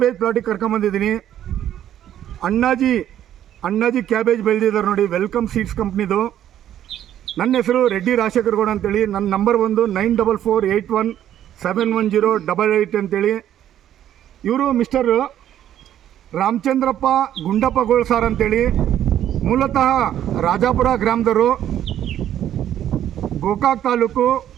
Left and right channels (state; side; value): quieter; left; 11.1 dB